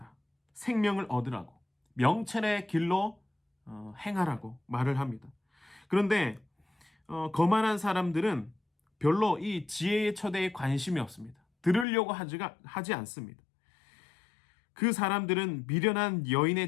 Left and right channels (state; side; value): drops out; right; at 11.9 s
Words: 생명을 얻으라고, 명철의 길로 행하라고 말을 합니다. 그런데 거만한 사람들은 별로 이 지혜의 초대에 관심이 없습니다. 들으려고 하지 않습니다. 그 사람들은 미련한